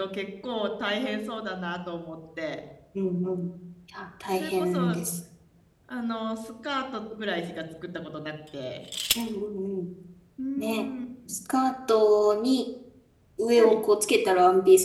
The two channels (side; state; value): both; identical; correlation 1.00